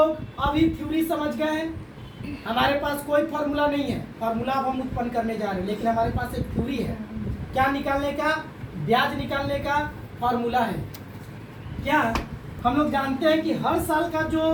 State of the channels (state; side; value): identical; both; correlation 1.00